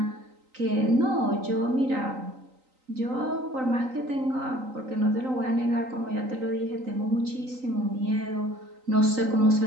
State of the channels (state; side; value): late; left; 3.9 ms